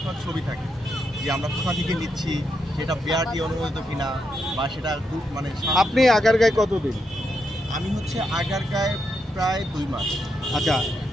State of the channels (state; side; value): normal; both; correlation 0.82